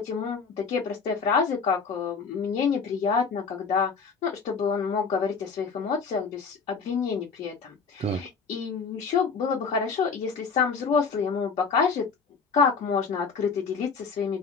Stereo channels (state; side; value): quieter; right; 5.3 dB